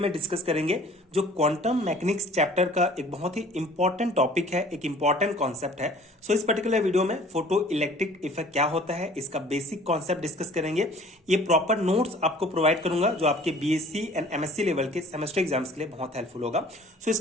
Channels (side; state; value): both; normal; correlation 0.50